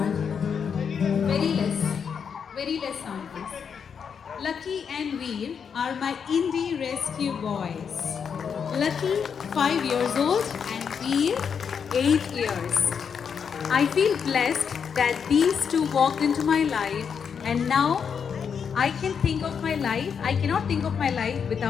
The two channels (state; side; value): quieter; right; 6.8 dB